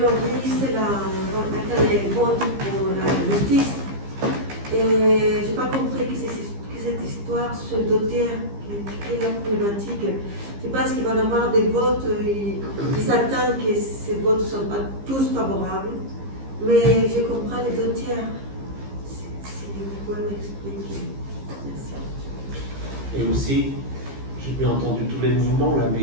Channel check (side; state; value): left; late; 15 ms